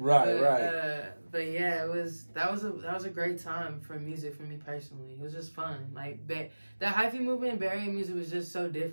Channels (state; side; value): inverted; both; correlation -1.00